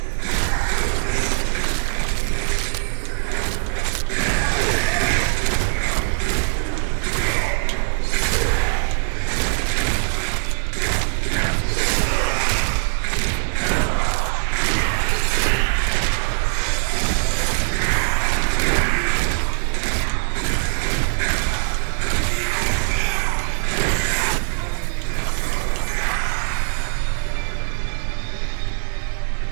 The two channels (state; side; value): silent; left; digital silence